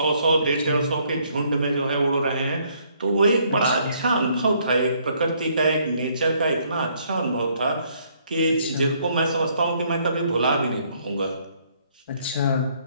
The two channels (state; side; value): inverted; both; correlation -0.67